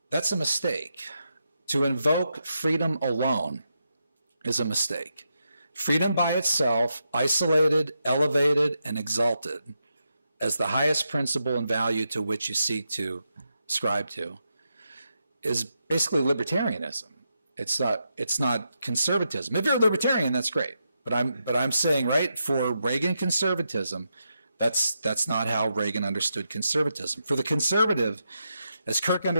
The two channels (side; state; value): both; inverted; correlation -0.85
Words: that's a mistake. To invoke freedom alone is a mistake. Freedom by itself, isolated, elevated, and exalted as the highest principle and value to which you seek to ascribe to, is basically libertarianism. It's not conservatism. If you're a libertarian, that's great. But I'm saying, right, for Reagan conservatism, that's not how Reagan understood conservatism. For the conservative, as Kirk